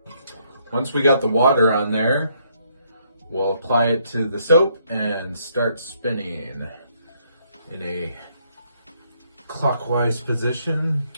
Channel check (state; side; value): inverted; both; correlation -0.71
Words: Once we got the water on there, we'll apply it to the soap and start spinning in a clockwise position,